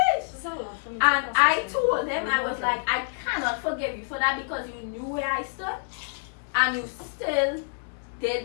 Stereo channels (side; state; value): right; silent; 60 dB below the other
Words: It's a lot for me. And I told him, I was like, I cannot forgive you for that because you knew where I stood and you still